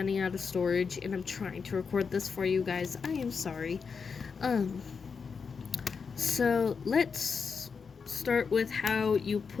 out of storage and I'm trying to record this for you guys. I am sorry. So let's start with how you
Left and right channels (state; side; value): quieter; right; 5.6 dB